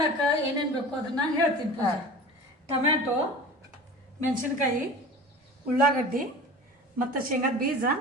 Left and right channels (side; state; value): both; normal; correlation 0.37